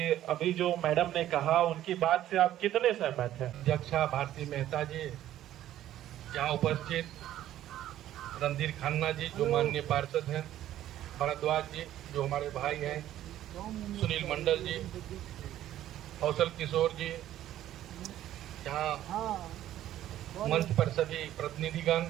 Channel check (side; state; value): left; quieter; 12.7 dB